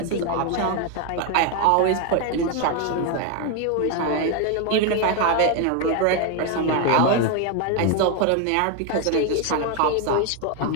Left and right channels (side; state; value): both; different; correlation 0.01